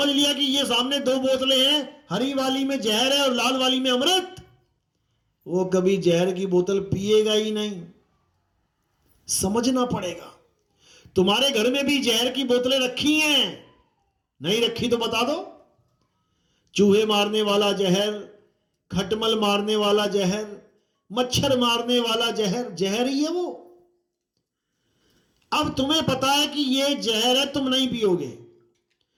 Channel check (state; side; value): identical; both; correlation 1.00